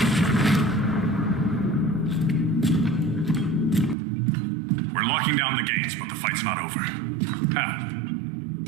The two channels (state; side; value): drops out; left; at 4.0 s